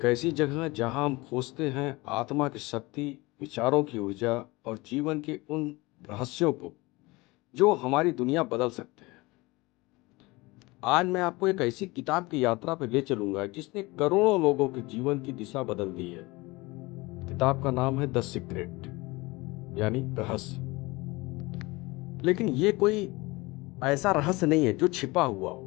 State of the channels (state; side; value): quieter; right; 22.9 dB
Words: ऐसी जगह जहां हम खोजते हैं आत्मा की शक्ति, विचारों की ऊर्जा और जीवन के उन रहस्यों को जो हमारी दुनिया बदल सकते हैं। आज मैं आपको एक ऐसी किताब की यात्रा पर ले चलूंगा जिसने करोड़ों लोगों के जीवन की दिशा बदल दी है। किताब का नाम है द सीक्रेट, यानी रहस्य। लेकिन ये कोई ऐसा रहस्य नहीं है जो छिपा हुआ हो,